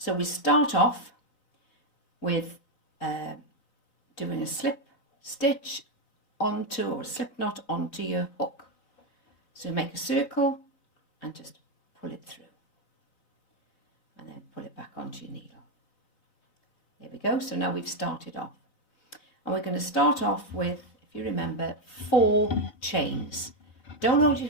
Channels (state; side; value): late; right; 4.0 ms